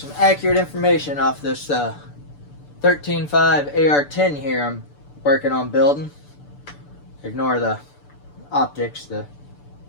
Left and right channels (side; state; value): right; late; 6.8 ms